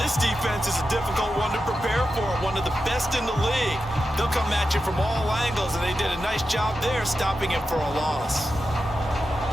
defense is a difficult one to prepare for, one of the best in the league. They'll come at you from all angles, and they did a nice job there stopping him for a loss.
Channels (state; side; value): normal; both; correlation 0.90